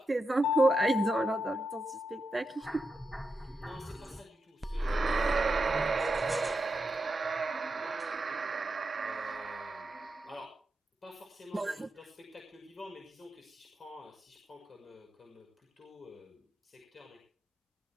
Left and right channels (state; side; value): normal; both; correlation 0.86